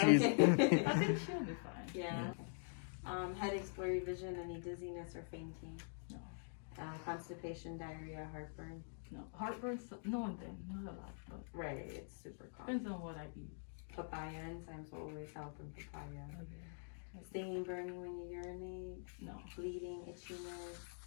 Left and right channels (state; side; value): silent; right; digital silence